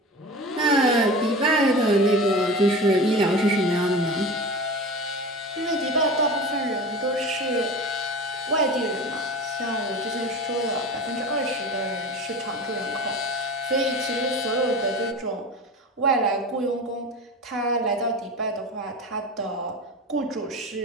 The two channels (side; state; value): both; normal; correlation 0.32